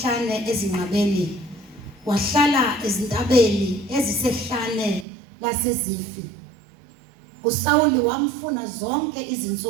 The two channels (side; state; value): left; drops out; at 5.1 s